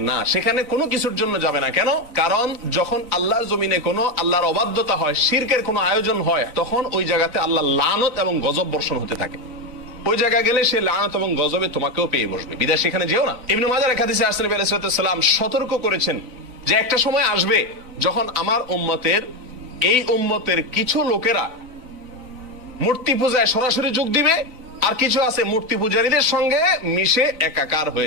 না, সেখানে কোনো কিছুর জন্য যাবে না। কেন? কারণ যখন আল্লাহর জমিনে কোনো আল্লাহর অবাধ্যতা হয়, শিরকের কোনো আয়োজন হয়, তখন ওই জায়গাতে আল্লাহর লানত এবং গজব বর্ষণ হতে থাকে। ওই জায়গায় গেলে সে লানত এবং গজবে তোমাকেও পেয়ে বসবে, বিদায় সেখানে যেও না। ইবনে মাজাহ এক হাদিসে আসলে নবী আলাইহিস সালাম সতর্ক করেছেন যে একটা সময় আসবে যখন আমার এই উম্মতের কিছু লোকেরা মূর্তি পূজায় সরাসরি যোগ দিবে, আর কিছু আছে মূর্তি পূজারীদের সঙ্গে মিশে একাকার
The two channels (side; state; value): left; late; 3.9 ms